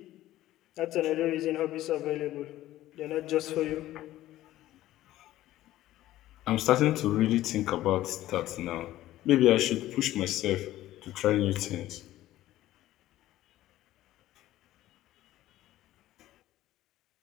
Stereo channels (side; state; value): right; quieter; 14.8 dB